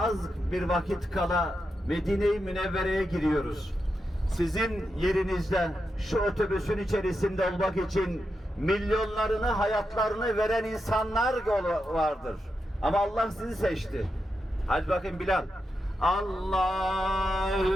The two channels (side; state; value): both; normal; correlation 0.87